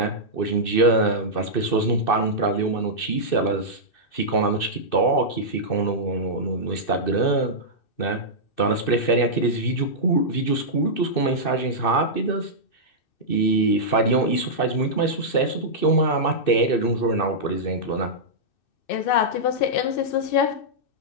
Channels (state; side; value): late; right; 2.6 ms